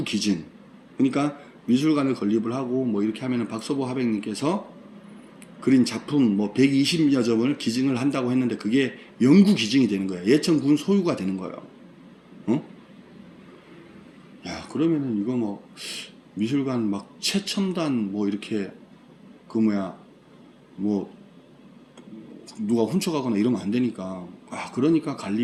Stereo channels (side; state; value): both; identical; correlation 1.00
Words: 기준. 그러니까 미술관을 건립을 하고 뭐 이렇게 하면은 박서보 하백님께서 그린 작품 뭐 120여 점을 기증을 한다고 했는데 그게 연구 기증이 되는 거예요. 예천군 소유가 되는 거예요. 야, 그러면은 이거 뭐 미술관 막 최첨단 뭐 이렇게 그 뭐 누가 훔쳐가거나 이러면 안 되니까 그러니까